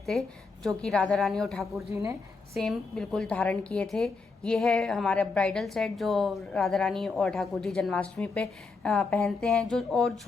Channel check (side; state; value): right; quieter; 4.3 dB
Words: थे जो कि राधा रानी और ठाकुर जी ने सेम बिल्कुल धारण किए थे। ये है हमारा ब्राइडल सेट जो राधा रानी और ठाकुर जी जन्माष्टमी पे पहनते हैं। जो और